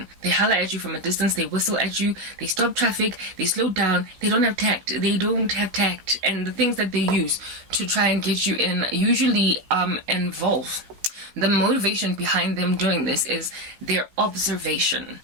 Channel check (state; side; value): late; left; 15 ms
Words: They holler at you from a distance. They whistle at you. They stop traffic. They slow down. They don't have tact. And the things that they use to try and get you in usually involve. The motivation behind them doing this is their observation